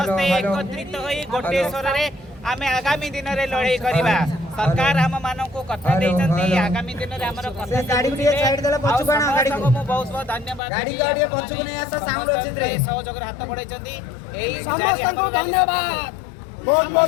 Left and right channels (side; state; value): right; drops out; at 10.6 s